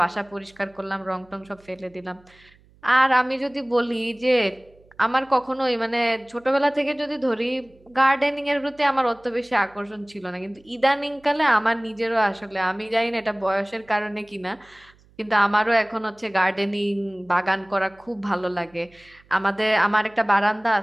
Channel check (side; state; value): right; noise; hum, 30 dB below the sound